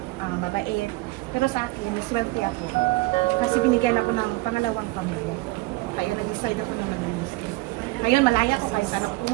mabait. Pero sa akin, naswerte ako. Kasi binigyan ako ng pangalawang pamilya. Kaya nag-decide ako na mag-Muslim. Ngayon, malaya ko kahit saan ako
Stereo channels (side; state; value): left; quieter; 21.2 dB